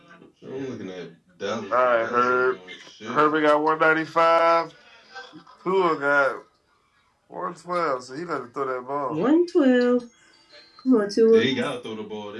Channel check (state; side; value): identical; both; correlation 1.00